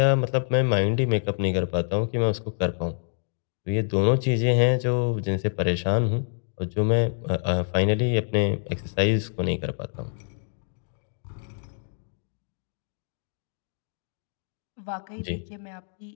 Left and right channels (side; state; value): right; silent; digital silence